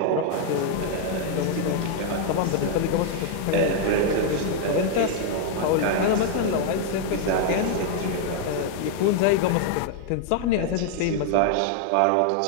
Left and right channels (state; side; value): different; both; correlation 0.00